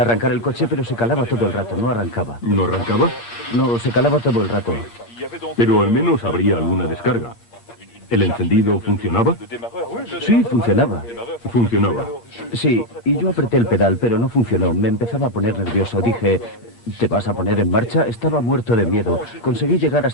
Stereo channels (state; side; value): late; right; 8.6 ms